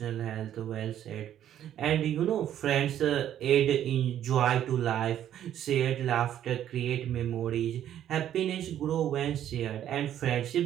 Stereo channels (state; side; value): quieter; left; 10.9 dB